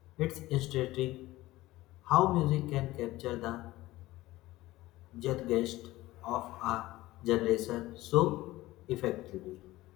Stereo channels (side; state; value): right; quieter; 17.7 dB